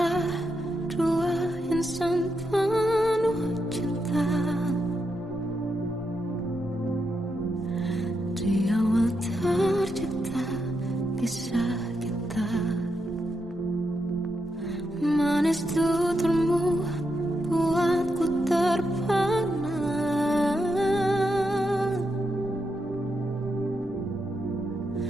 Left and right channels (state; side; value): normal; both; correlation 0.84